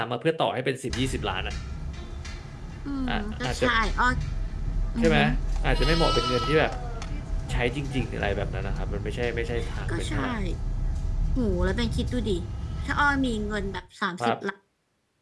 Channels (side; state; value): both; identical; correlation 1.00